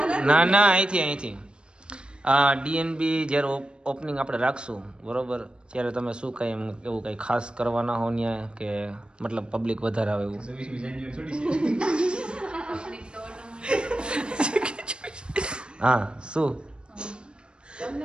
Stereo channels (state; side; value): late; left; 0.054 ms